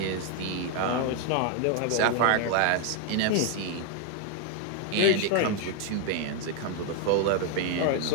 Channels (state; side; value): different; both; correlation 0.01